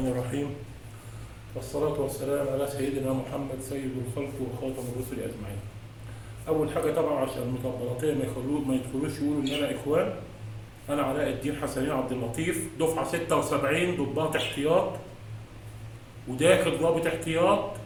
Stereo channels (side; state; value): both; identical; correlation 1.00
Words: الرحيم، والصلاة والسلام على سيدنا محمد سيد الخلق وخاتم الرسل أجمعين. أول حاجة طبعا عشان المطبلاتية ما يدخلوش يقولوا إن أنا إخوان، أنا علاء الدين حسنين عبد اللطيف، دفعة 76 ضباط احتياط وداخل ضابط احتياط.